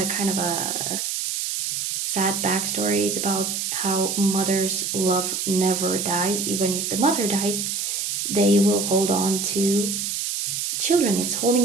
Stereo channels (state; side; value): noise; right; hiss, 2 dB below the sound